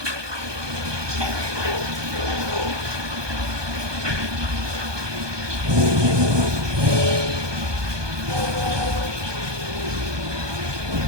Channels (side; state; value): left; late; 1.2 ms